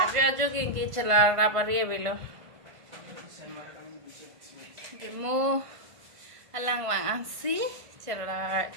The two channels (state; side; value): late; left; 1.5 ms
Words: ajo gengi celara pari belo demo alang wang ansi